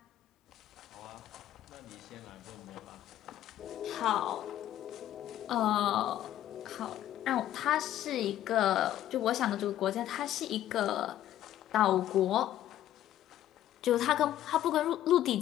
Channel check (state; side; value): quieter; right; 12.5 dB